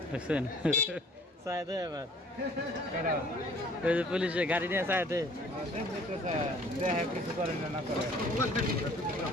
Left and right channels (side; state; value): both; normal; correlation 0.54